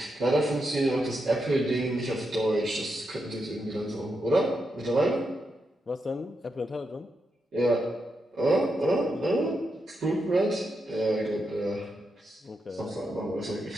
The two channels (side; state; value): both; normal; correlation 0.84